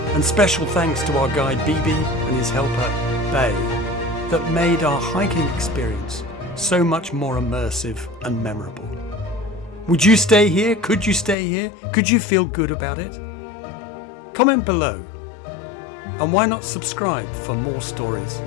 and special thanks to our guide Bibi and his helper Bay, that made our hiking experience so much more immersive and memorable. Would you stay here? Could you stay here? Could you feel good about it? Comment below. And why not subscribe for more stories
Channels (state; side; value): drops out; right; at 11.4 s